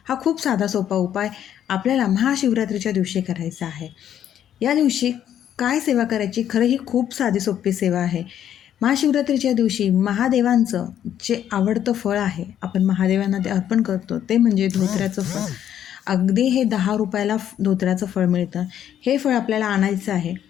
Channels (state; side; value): quieter; right; 10.2 dB